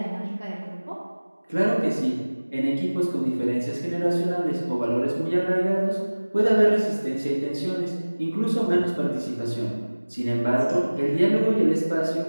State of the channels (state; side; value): inverted; both; correlation -1.00